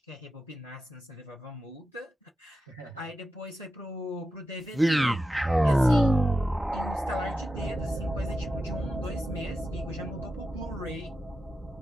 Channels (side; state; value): both; normal; correlation 0.90